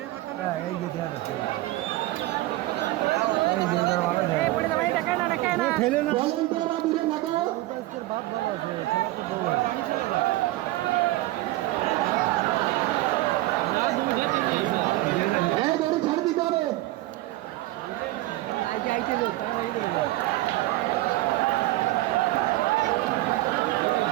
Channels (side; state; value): left; quieter; 17.9 dB